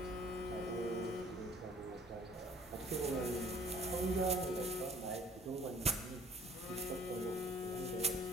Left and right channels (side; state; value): both; normal; correlation 0.54